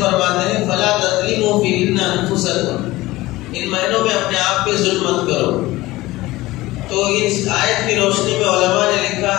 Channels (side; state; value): right; quieter; 18.6 dB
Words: ہیں فَلَا تَظْلِمُوا فِيهِنَّ أَنفُسَكُمْ، ان مہینوں میں اپنے آپ پہ ظلم مت کرو۔ تو اس آیت کی روشنی میں علماء نے لکھا